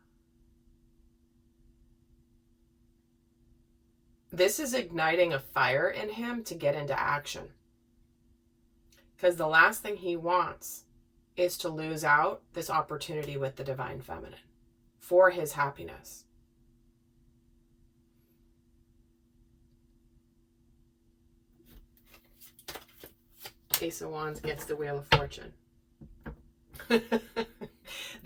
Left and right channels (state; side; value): identical; both; correlation 1.00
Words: This is igniting a fire in him to get into action. Because the last thing he wants is to lose out this opportunity with the divine feminine for his happiness. Ace of Wands gets the Wheel of Fortune.